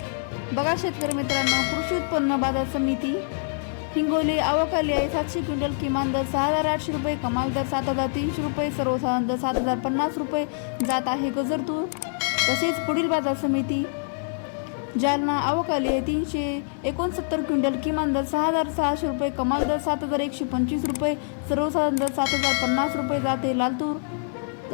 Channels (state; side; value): silent; right; digital silence